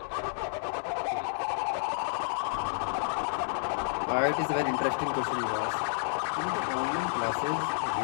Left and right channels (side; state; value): right; silent; digital silence